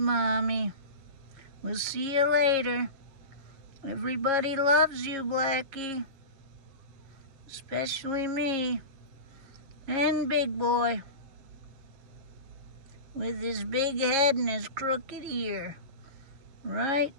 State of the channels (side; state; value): left; late; 7.3 ms